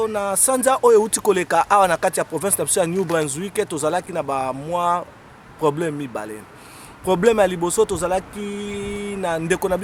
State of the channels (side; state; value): both; identical; correlation 1.00